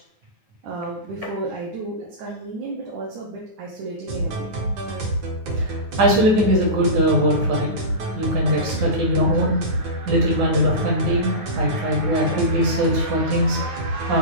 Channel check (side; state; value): left; late; 9.8 ms